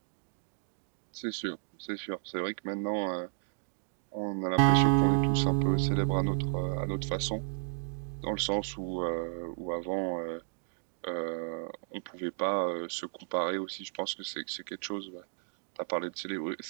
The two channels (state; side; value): silent; left; digital silence